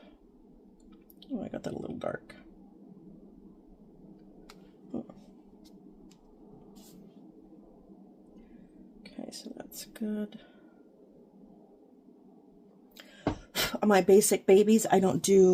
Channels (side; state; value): both; identical; correlation 1.00